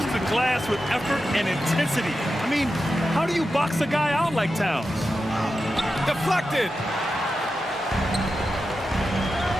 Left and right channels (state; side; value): normal; both; correlation 0.91